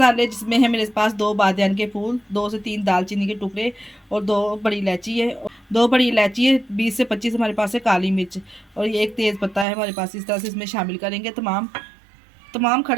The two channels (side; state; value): left; drops out; at 9.7 s